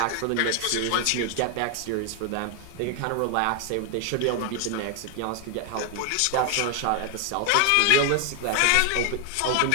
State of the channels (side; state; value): both; different; correlation 0.00